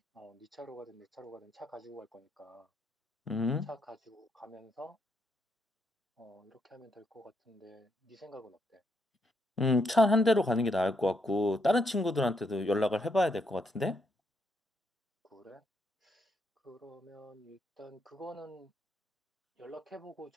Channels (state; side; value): normal; both; correlation 0.77